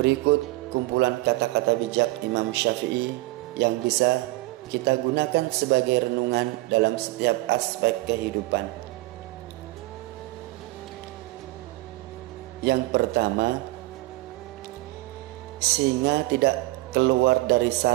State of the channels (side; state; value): left; quieter; 20.5 dB